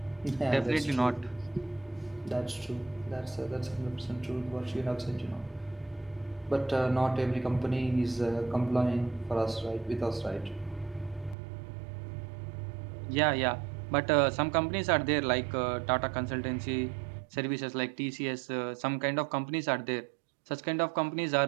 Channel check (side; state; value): left; drops out; at 11.4 s